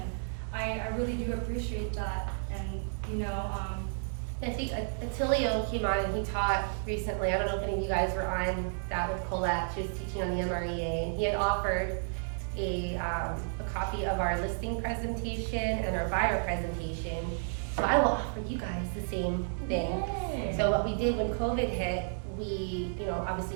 I really do appreciate that. And, you know, I think Attilio came on and he taught recently, I don't know if any of you guys were on that with Colette, she was teaching on the MREA, and he had offered a copy of our listing presentation and our buyer presentation. So I will offer you guys the same thing. Yay. So what we did when COVID hit, we, you know,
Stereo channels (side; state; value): left; silent; digital silence